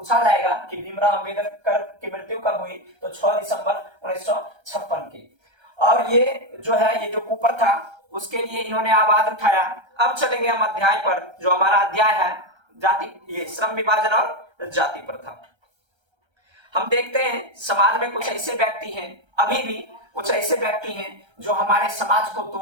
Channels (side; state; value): left; late; 1.3 ms